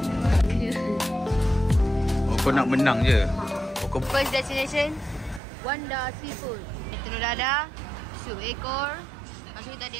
Oh, kau nak menang je. Oh, First destination Wanda Seafood. Telur dadah, sup ekor. Lepas tu kita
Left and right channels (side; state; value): left; drops out; at 5.4 s